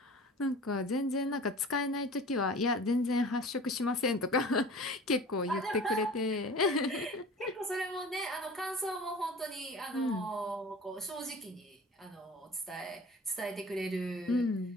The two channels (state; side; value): normal; both; correlation 0.40